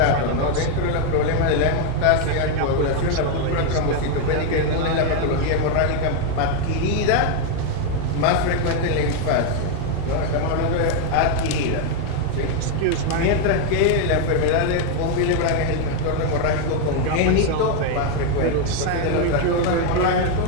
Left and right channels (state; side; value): different; both; correlation 0.01